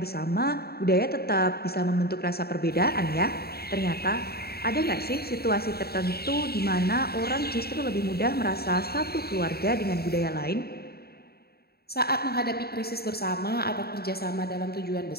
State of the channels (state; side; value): late; right; 0.46 ms